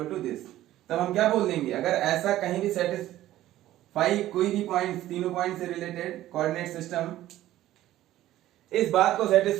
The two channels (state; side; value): quieter; left; 14.2 dB